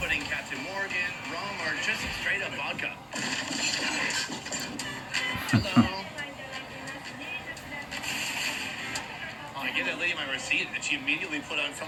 Captain Morgan, rum, or just straight up vodka. Hello. I gave that lady my receipt, and she immediately put on so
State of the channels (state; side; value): identical; both; correlation 1.00